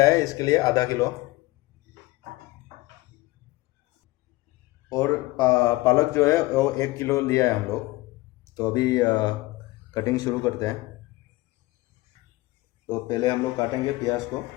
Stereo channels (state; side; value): quieter; right; 20.3 dB